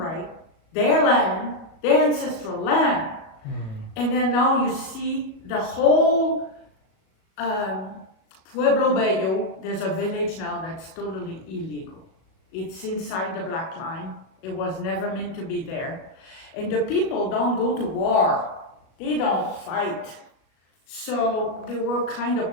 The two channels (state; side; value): late; right; 37 ms